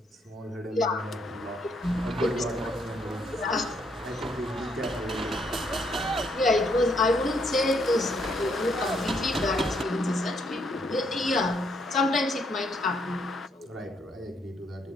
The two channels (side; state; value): both; normal; correlation 0.72